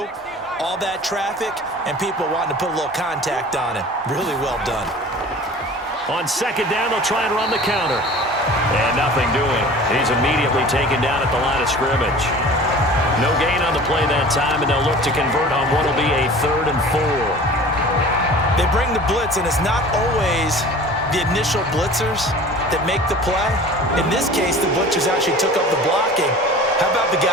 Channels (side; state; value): both; normal; correlation 0.42